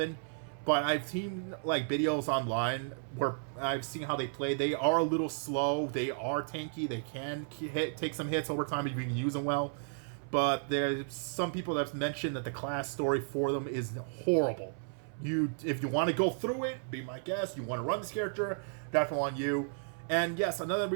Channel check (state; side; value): silent; left; 55 dB below the other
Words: But I've seen like videos online where I've seen how they play. They are a little slow. They are tanky. They can take some hits over time if you can use them well. But there's some people that have mentioned that the class story for them is horrible. If you want to go through it, be my guest. You want to run this character, definitely on you. And yes, another